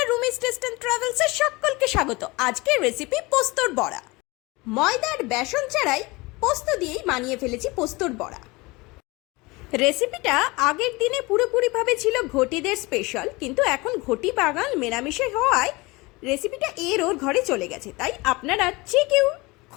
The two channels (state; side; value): quieter; right; 23.7 dB